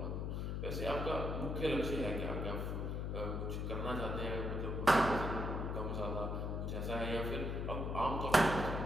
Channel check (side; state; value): left; noise; hum, 1 dB below the sound